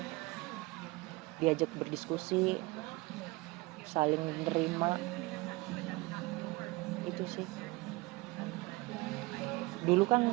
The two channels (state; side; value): quieter; left; 23.0 dB